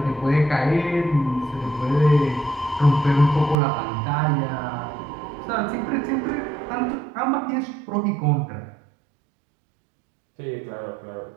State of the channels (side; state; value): left; drops out; at 3.6 s